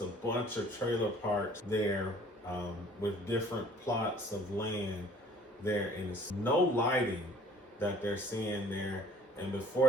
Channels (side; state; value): both; normal; correlation 0.53